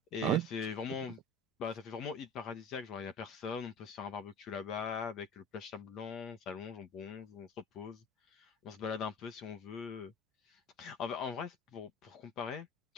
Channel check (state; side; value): normal; both; correlation 0.38